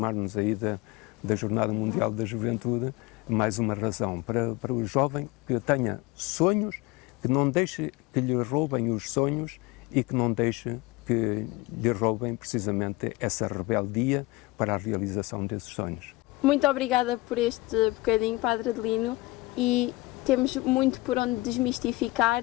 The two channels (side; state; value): right; quieter; 21.6 dB